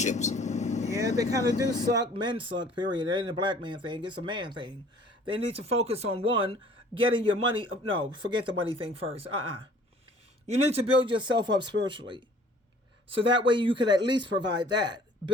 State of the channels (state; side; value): normal; both; correlation 0.53